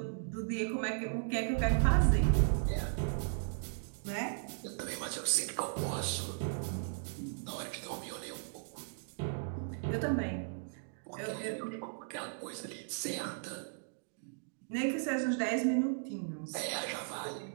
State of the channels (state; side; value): silent; left; digital silence